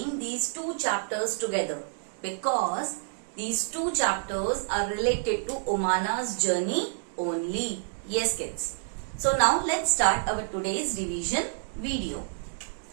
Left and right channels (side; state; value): left; silent; digital silence